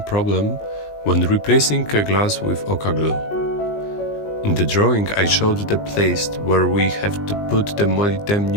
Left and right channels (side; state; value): right; late; 20 ms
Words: problem when replacing a glass with OCA glue. In the drawing I showed the place where we have to put the